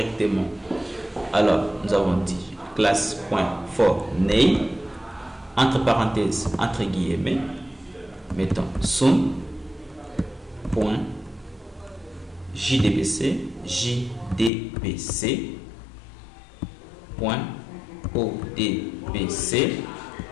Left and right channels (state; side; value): drops out; right; at 14.5 s